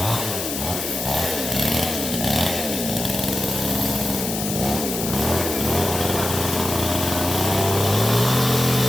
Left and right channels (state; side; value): noise; left; hiss, 5 dB below the sound